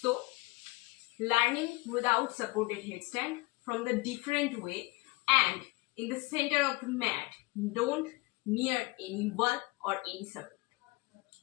learning without supported headstand from the different way and in the center of the mat, don't near any wall or any support.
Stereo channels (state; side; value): quieter; right; 23.6 dB